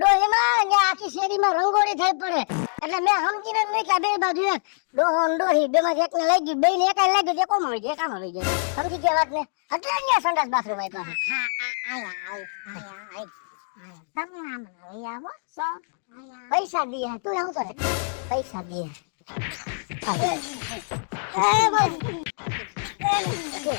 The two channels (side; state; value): right; silent; digital silence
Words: ડોહીમાં ને આખી શેરીમાં રંગોળી થઈ પડે. એટલે મેં સમજીને મૂક્યા બે બાજુ એક ડોહો ને ડોહી બે માંથી એકને લઈ ગયું, બે ને એક લઈ ગયું, કોમ આવી જાય, કામ આવી જાય. સમજી ગયા વાત ને? એટલે અહીંયા સંડાસ બાથરૂમ આપ્યા. હા આયા તમે આમ લઈ આવો શું પૈસા દીએ, તું આવતો ને પૈસા દીએ.